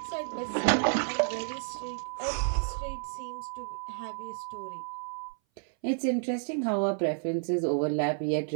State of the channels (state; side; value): silent; left; 57 dB below the other